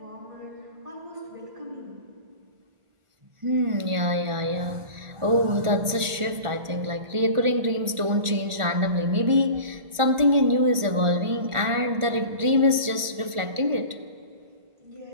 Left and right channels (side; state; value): left; late; 1.4 ms